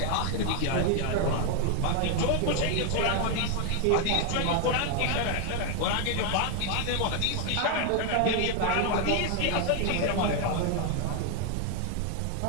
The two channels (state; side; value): different; both; correlation 0.01